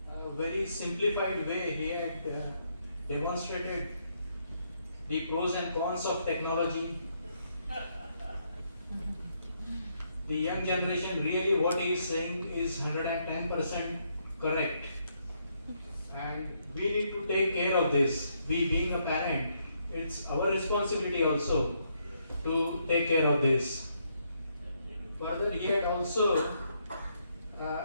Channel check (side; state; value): both; inverted; correlation -0.75